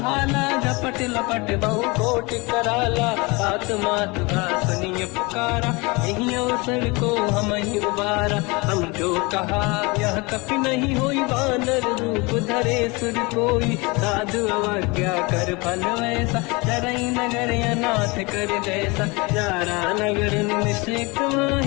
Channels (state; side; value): quieter; right; 26.5 dB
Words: झपट लपट बहु कोटि कराला। आत्मात का सुनिय पुकारा, यही अवसर को हम ही उबारा। हम जो कहा यह कपि नहीं होई, वानर रूप धरे सुर कोई। साधु अवज्ञा कर फल वैसा, जरई नगर अनाथ कर जैसा। जारा नगर निश्चित